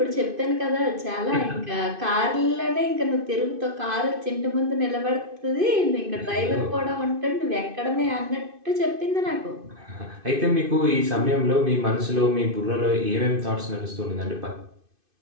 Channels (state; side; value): late; left; 2.5 ms